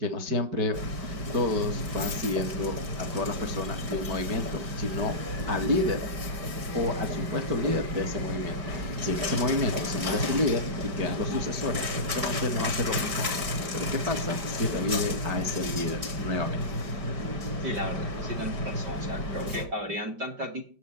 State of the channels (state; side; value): late; left; 5.2 ms